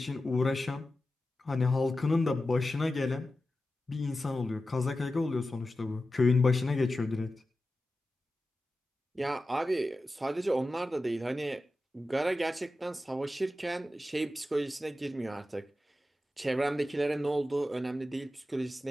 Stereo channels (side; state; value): both; normal; correlation 0.93